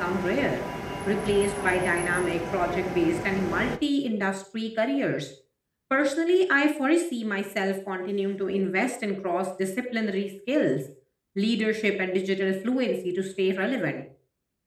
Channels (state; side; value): identical; both; correlation 1.00